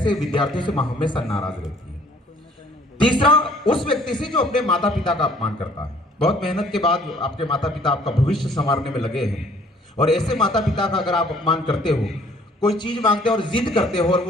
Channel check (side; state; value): both; normal; correlation 0.58